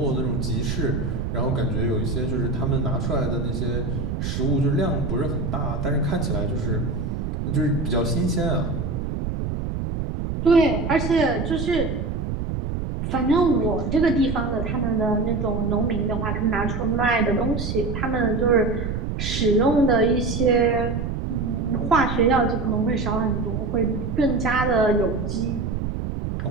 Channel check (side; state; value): right; noise; rumble, 3 dB below the sound